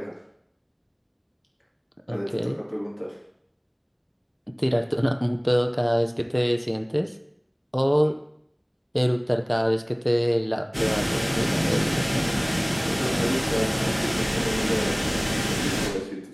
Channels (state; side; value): identical; both; correlation 1.00